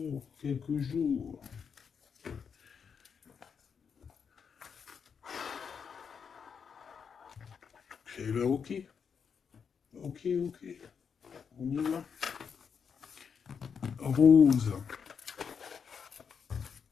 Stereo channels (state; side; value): quieter; right; 6.6 dB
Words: quelques jours. Eh ben, ok. Ok. On y va. Rose.